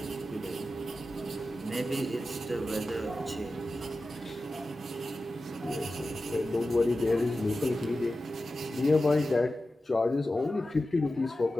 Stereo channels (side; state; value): both; normal; correlation 0.93